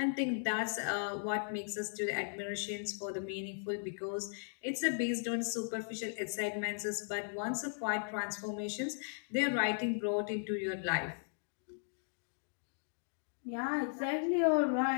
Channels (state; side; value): silent; right; digital silence